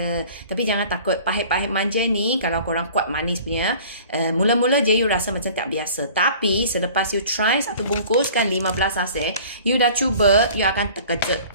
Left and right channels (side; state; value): both; inverted; correlation -0.47